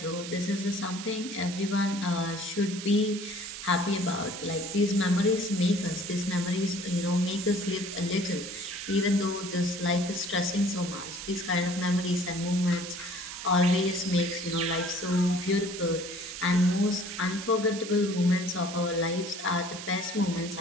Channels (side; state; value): right; noise; hiss, 10 dB below the sound